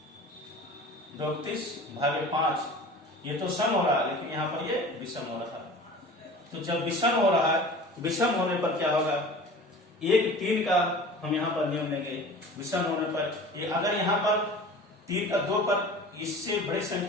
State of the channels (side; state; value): both; normal; correlation 0.40